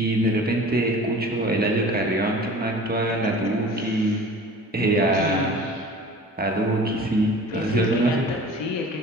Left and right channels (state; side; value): normal; both; correlation 0.42